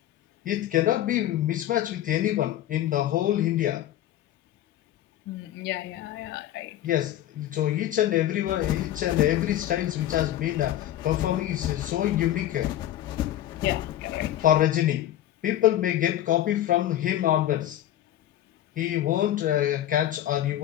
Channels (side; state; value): right; quieter; 12.7 dB